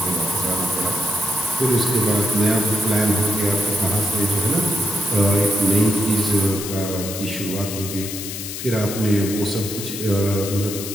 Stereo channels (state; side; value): noise; left; hiss, 7 dB below the sound